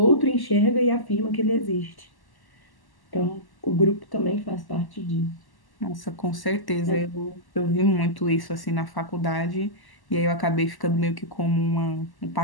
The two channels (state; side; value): late; right; 1.1 ms